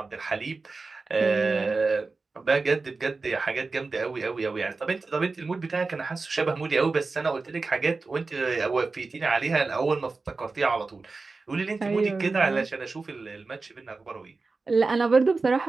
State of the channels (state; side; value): quieter; left; 3.9 dB